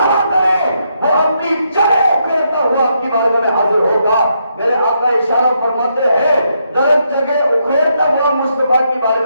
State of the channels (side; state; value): both; inverted; correlation -0.78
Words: کریں, وہ اپنی جڑیں اکھیڑتا ہوا آپ کی بارگاہ میں حاضر ہوگا. میرے آقا اشارہ فرماتے ہیں, درخت جگہ اکھیڑتا ہوا مصطفیٰ کی